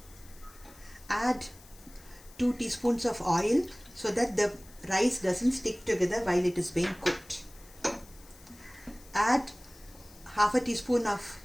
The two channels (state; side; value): noise; left; hiss, 23 dB below the sound